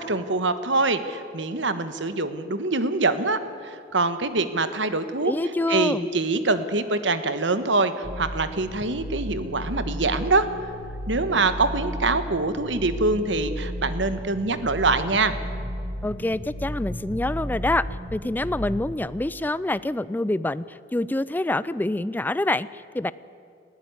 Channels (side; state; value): both; normal; correlation 0.16